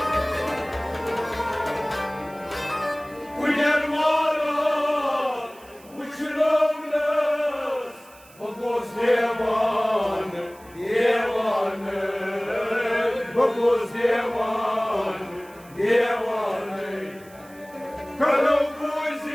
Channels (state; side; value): noise; right; hiss, 25 dB below the sound